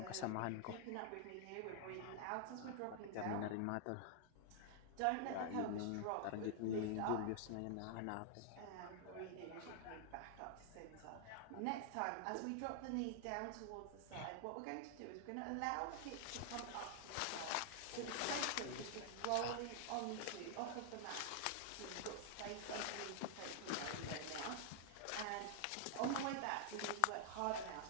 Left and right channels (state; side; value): different; both; correlation 0.00